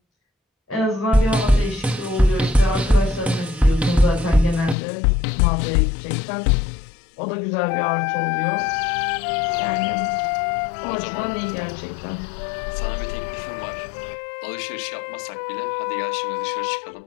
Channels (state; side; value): drops out; right; at 4.8 s